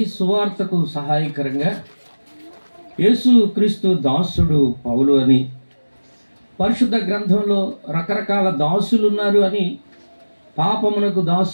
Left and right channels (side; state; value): both; inverted; correlation -1.00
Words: సువార్తకు సహాయకరంగా యేసుక్రీస్తు దాసుడు పౌలు అని, పరిశుద్ధ గ్రంథంలో రకరకాల దాసులు ఉన్నారు అని, పాపమునకు